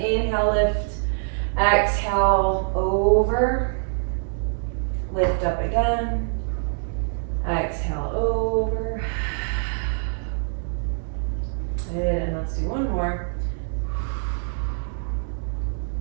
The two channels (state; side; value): silent; left; digital silence